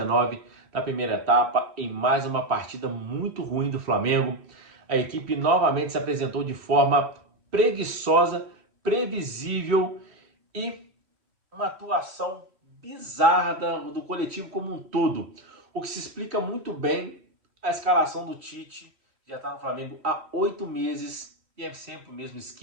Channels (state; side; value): late; left; 3.1 ms